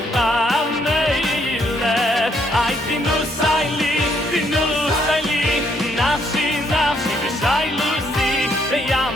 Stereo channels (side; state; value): both; normal; correlation 0.70